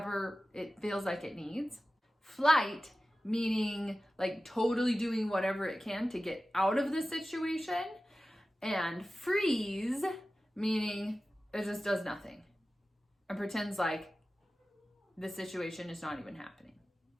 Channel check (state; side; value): normal; both; correlation 0.95